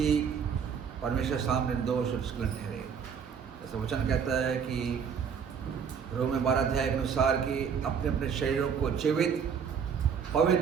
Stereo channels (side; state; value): left; quieter; 6.9 dB